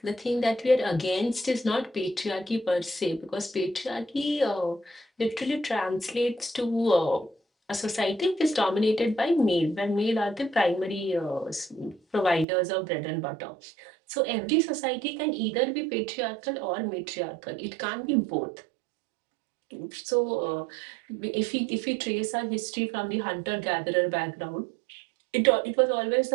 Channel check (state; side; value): drops out; left; at 12.5 s